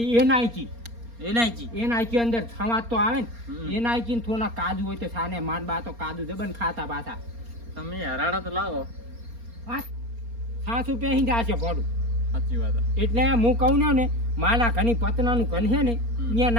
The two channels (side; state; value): left; late; 4.3 ms